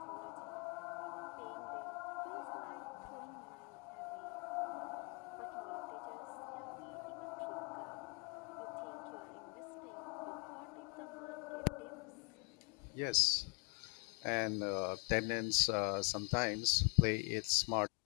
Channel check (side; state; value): right; quieter; 35.3 dB